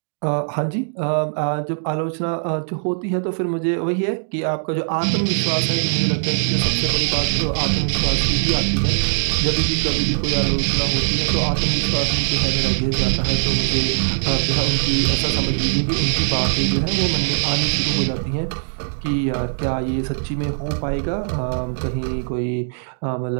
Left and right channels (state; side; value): silent; left; digital silence